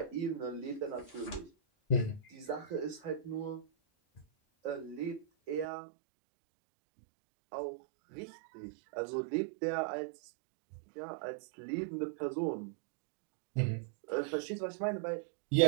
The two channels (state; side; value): drops out; left; at 5.7 s